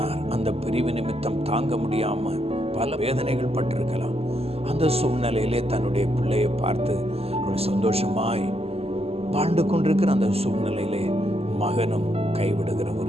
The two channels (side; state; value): left; late; 0.29 ms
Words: அந்த பிரிவு நிமித்தம் தாங்க முடியாமல் பல வேதனைகள் பட்டிருக்கலாம். அந்த சூழ்நிலையிலே தன்னுடைய பிள்ளையை பார்த்து அவள் சந்தோஷமாய் வாழ்ந்து கொண்டிருக்கிற அந்த சூழ்நிலையிலே மகனும் கைவிடுகிற